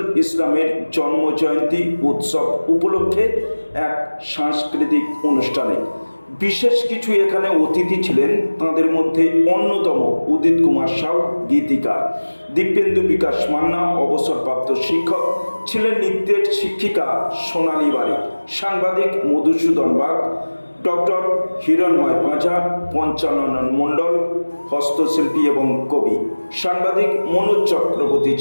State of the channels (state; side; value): inverted; both; correlation -1.00